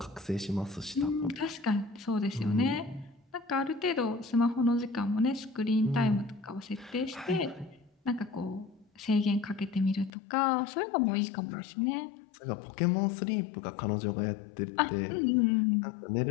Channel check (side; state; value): right; drops out; at 10.1 s